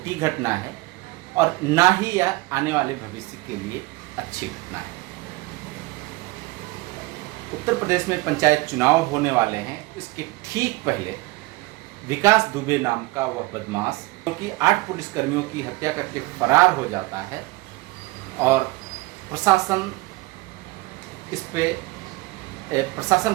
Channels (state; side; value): quieter; left; 22.1 dB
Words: घटना है और ना ही यह आने वाले भविष्य के लिए अच्छी घटना है। उत्तर प्रदेश में पंचायत चुनाव होने वाले हैं। इसके ठीक पहले विकास दुबे नाम का वह बदमाश, क्योंकि 8 पुलिसकर्मियों की हत्या करके फरार हो जाता है और प्रशासन इस पे